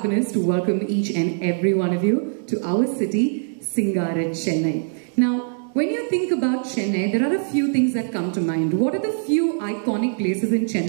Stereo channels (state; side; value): silent; left; digital silence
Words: to welcome each and every one of you to our city, Singara, Chennai. Now, when you think about Chennai, there are a few things that come to mind. What are the few iconic places in